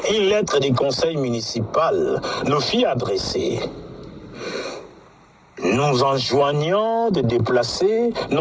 une lettre du conseil municipal nous fit adresser, nous enjoignant de déplacer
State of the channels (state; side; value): identical; both; correlation 1.00